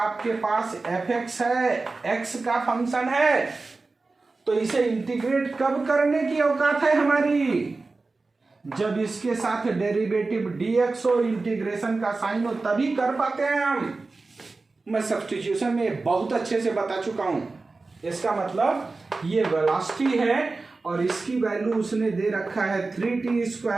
पास fx है, x का फंक्शन है, तो इसे इंटीग्रेट कब करने की औकात है हमारी, जब इसके साथ डेरिवेटिव dx हो, इंटीग्रेशन का साइन हो, तभी कर पाते हैं हम। मैं सब्स्टिट्यूशन में बहुत अच्छे से बता चुका हूं। इसका मतलब ये वेलोसिटी है और इसकी वैल्यू उसने दे रखा है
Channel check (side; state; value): left; quieter; 3.7 dB